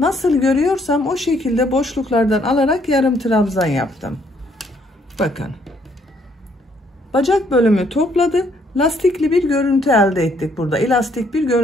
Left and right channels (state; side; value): normal; both; correlation 0.68